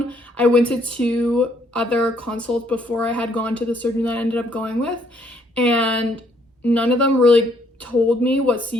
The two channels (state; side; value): normal; both; correlation 0.68